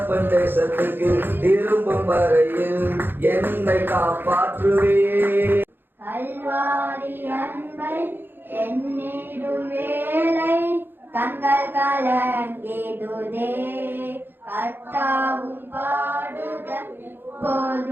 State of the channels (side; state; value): left; late; 0.099 ms